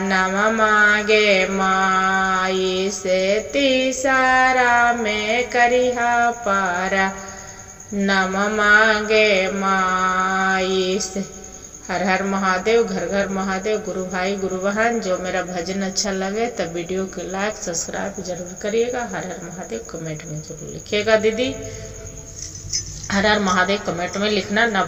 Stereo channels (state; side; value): identical; both; correlation 1.00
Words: नम मागे माई से तीसारा में करिहा पारा नम मागे माई से। हर हर महादेव, घर घर महादेव। गुरु भाई गुरु बहन, जो मेरा भजन अच्छा लगे तब वीडियो को लाइक सब्सक्राइब जरूर करिएगा। हर हर महादेव कमेंट में जरूर लिखिएगा दीदी। हर हर महादेव कमेंट में लिखना ना